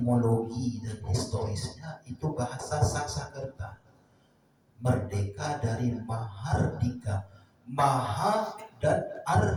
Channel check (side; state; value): both; identical; correlation 1.00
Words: dan historisnya itu bahasa Sanskerta. Merdeka dari Mahardika. Maha dan